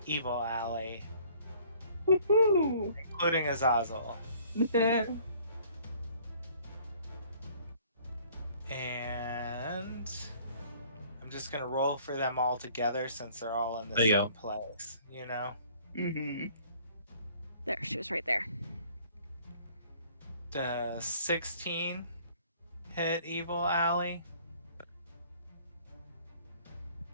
Evil Alley, Woohoo! including Azazel. And I'm just gonna roll for them all together since they're all in the There you same go. place, you know? Mm-hmm. There, she was right there. The 16 hit Evil Alley.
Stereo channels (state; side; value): inverted; both; correlation -0.56